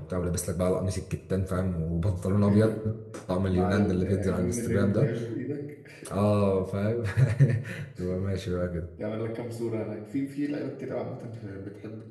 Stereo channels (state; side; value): identical; both; correlation 1.00